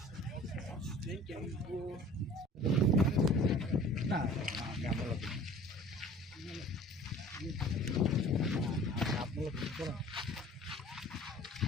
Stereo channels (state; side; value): normal; both; correlation 0.47